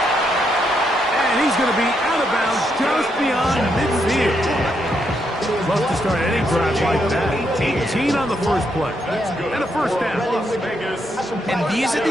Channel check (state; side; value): normal; both; correlation 0.78